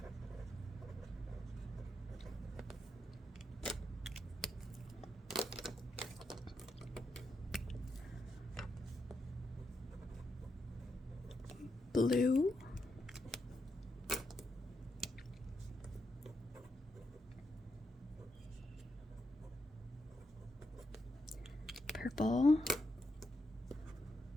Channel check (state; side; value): normal; both; correlation 0.82